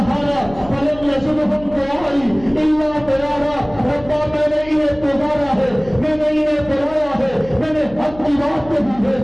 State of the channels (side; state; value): left; noise; hum, 18 dB below the sound